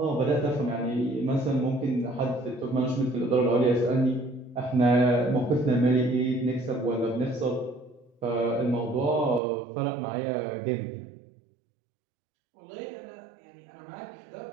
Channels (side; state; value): left; drops out; at 9.4 s